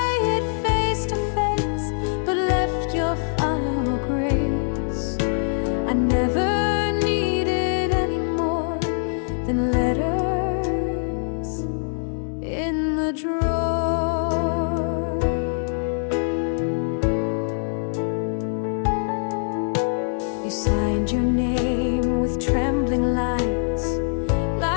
it face to face, but left your final grace. I never needed any more than letters in the drawer. You signed your name with trembling lines,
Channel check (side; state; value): right; silent; digital silence